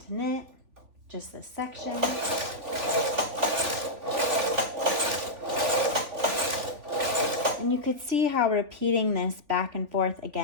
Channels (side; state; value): left; late; 3.5 ms